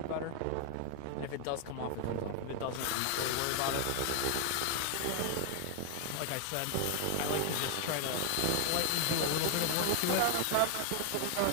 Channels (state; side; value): different; both; correlation 0.00